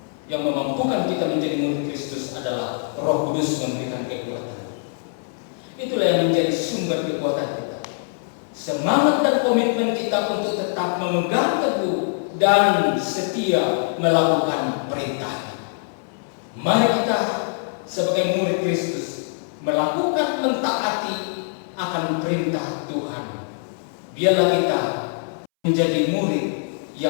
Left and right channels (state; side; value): silent; right; 63 dB below the other